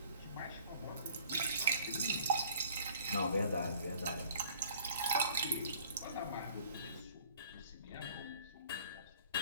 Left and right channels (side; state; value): both; inverted; correlation -0.52